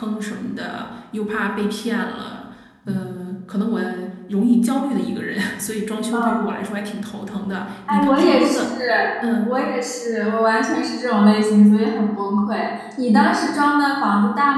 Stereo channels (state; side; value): identical; both; correlation 1.00